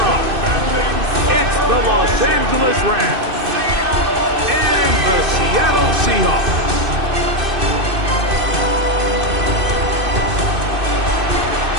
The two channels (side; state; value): left; late; 2.6 ms